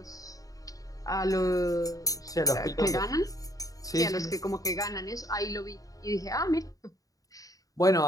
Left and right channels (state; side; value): late; right; 0.17 ms